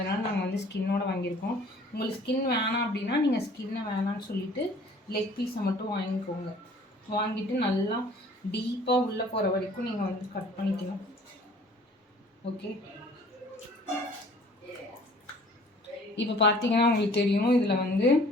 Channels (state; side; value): normal; both; correlation 0.52